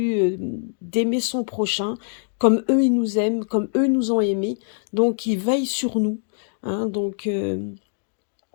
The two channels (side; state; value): right; silent; digital silence